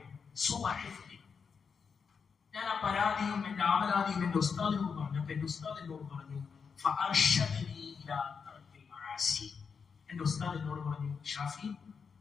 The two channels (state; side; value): quieter; right; 5.9 dB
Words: ഞാൻ ആ പരാതിയും എന്റെ ആവലാതിയും എന്റെ ഉസ്താദിനോട് പറഞ്ഞു. അപ്പൊ എന്റെ ഉസ്താദ് എന്നോട് പറഞ്ഞു, എന്റെ ഉസ്താദ് എന്നോട് പറഞ്ഞു, ഷാഫി,